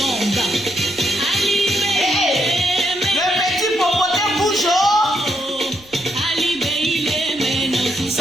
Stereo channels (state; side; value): noise; left; rumble, 27 dB below the sound